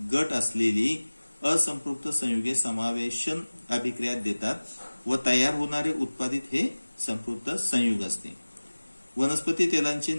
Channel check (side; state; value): both; inverted; correlation -1.00